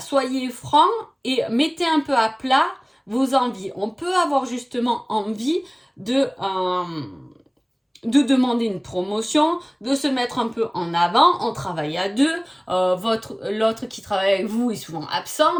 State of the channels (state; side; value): identical; both; correlation 1.00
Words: soyez francs et mettez un peu à plat vos envies. On peut avoir justement envie de demander une promotion, de se mettre un peu en avant, on travaille à deux, l'autre qui travaille avec vous est souvent